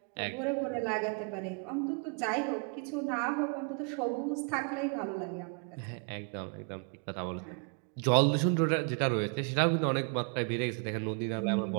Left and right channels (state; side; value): quieter; left; 36.6 dB